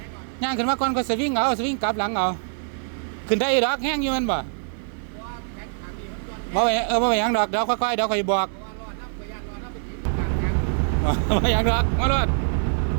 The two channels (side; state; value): left; silent; digital silence